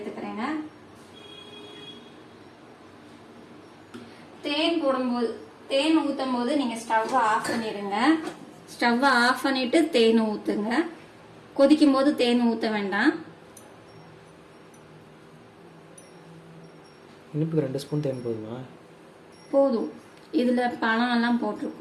தேன் ஊத்தும் போது நீங்க ஸ்டவ் ஆஃப் பண்ணிடுங்க. ஸ்டவ் ஆஃப் பண்ணிட்டு தேன் ஊத்துங்க. கொதிக்கும் போது தேன் ஊத்த வேண்டாம். இனிப்புக்கு 2 ஸ்பூன் தேன் போதுமா? போதும். இதுல பழம் எல்லாம்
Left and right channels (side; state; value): both; identical; correlation 1.00